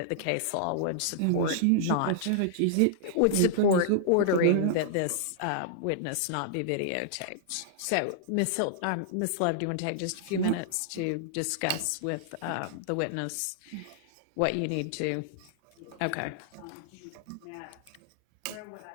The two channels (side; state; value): both; different; correlation -0.01